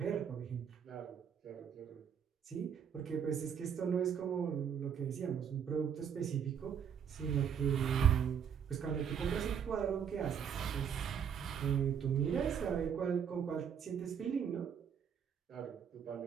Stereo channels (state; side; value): quieter; left; 7.8 dB